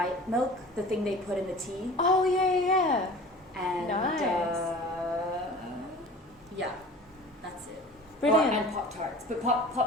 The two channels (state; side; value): normal; both; correlation 0.41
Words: milk, the thing they put in the tea. Oh yeah. And nice. That's it. Brilliant. And Pop-Tarts. But